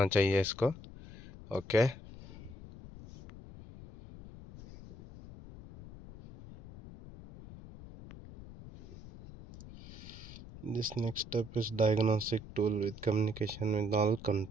चाहिए इसको। Okay, this next step is diagnostic tool with communication with all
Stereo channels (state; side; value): noise; left; rumble, 15 dB below the sound